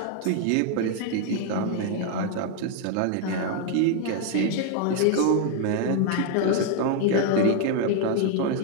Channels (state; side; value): different; both; correlation 0.01